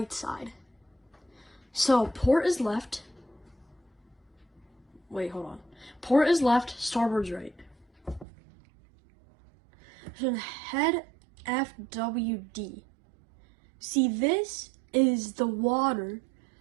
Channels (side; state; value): left; drops out; at 8.2 s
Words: side. So port is left. Wait, hold on. Port is left, starboard's right. So head FWD. See, this is the water